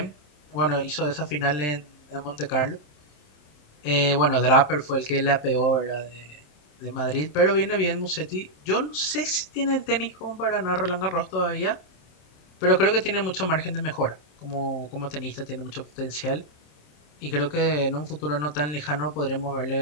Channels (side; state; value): right; late; 27 ms